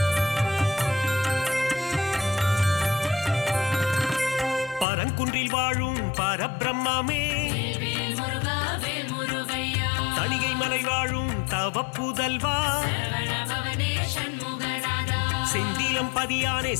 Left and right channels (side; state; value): right; drops out; at 4.9 s